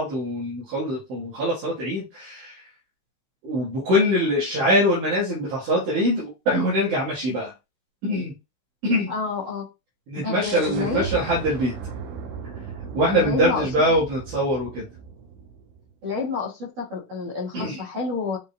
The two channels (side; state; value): left; late; 16 ms